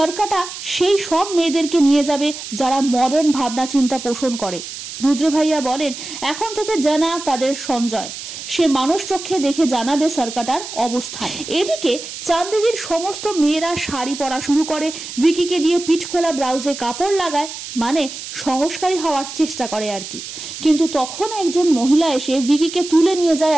সেই সব মেয়েদেরকে নিয়ে যাবে যারা মডার্ন ভাবনা চিন্তা পোষণ করে। রুদ্র ভাইয়া বলেন এখন থেকে জানা তাদের সঞ্জয়, সে মানুষ চোখে দেখে জানাবে সরকাটার অবস্থান। এদিকে চান্দেরির সমস্ত মেয়েরা শাড়ি পরা শুরু করে, ভিকিকে দিয়ে পিঠ খোলা ব্লাউজে কাপড় লাগায়, মানে সংস্কারী হওয়ার চেষ্টা করে আর কি। কিন্তু তখন একজন মহিলা এসে ভিকিকে তুলে নিয়ে যায়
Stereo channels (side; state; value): right; noise; hiss, 10 dB below the sound